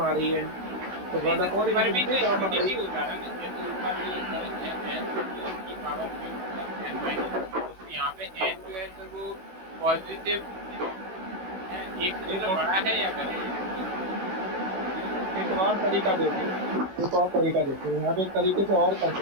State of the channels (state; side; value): late; left; 16 ms